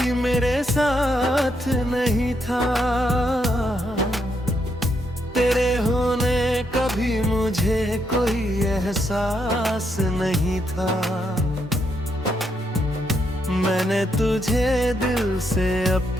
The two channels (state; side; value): normal; both; correlation 0.78